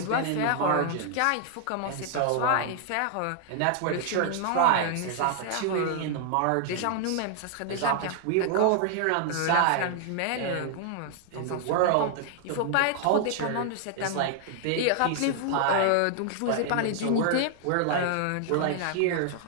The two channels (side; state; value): both; different; correlation 0.00